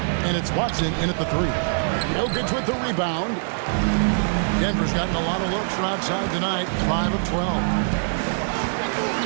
And it's Watson in at the 3. Jokic with the rebound. Denver's gotten a lot of looks from outside tonight, 5 of 12.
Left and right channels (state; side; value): silent; left; digital silence